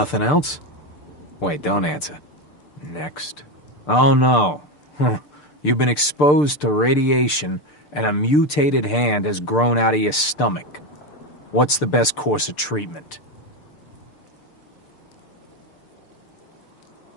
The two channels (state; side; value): late; right; 6.7 ms